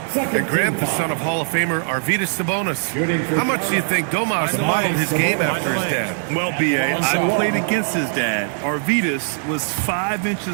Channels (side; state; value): left; silent; 61 dB below the other